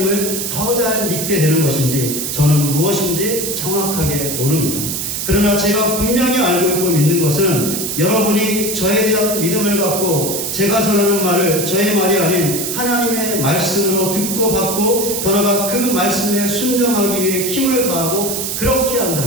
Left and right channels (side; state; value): right; noise; hiss, 3 dB below the sound